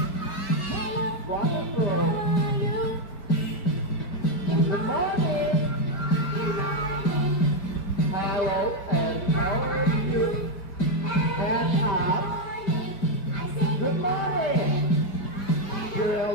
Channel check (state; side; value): late; right; 4.6 ms